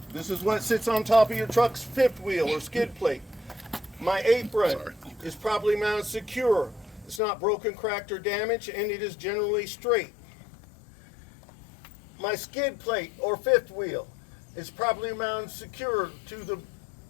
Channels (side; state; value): right; drops out; at 7.2 s